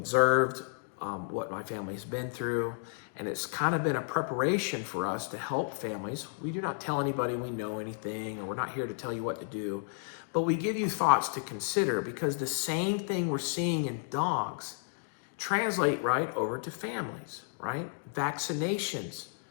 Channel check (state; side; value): silent; right; digital silence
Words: what my family's been through, and it's kind of been a preparation for us to help families. We do not tell anybody we know anything, or we're not here to tell you what to do, but we give you thoughts to consider, because the same thing we're seeing in dogs translate right over to families, right? Vaccinations,